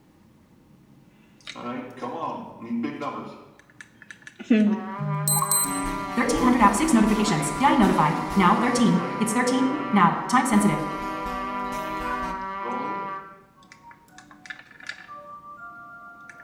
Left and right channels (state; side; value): identical; both; correlation 1.00